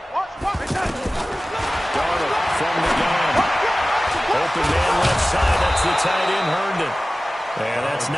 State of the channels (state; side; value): normal; both; correlation 0.97